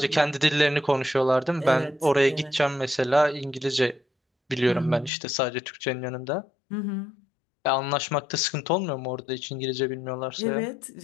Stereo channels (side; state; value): right; drops out; at 5.1 s